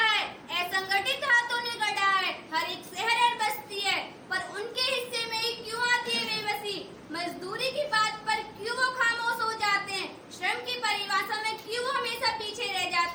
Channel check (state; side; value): identical; both; correlation 1.00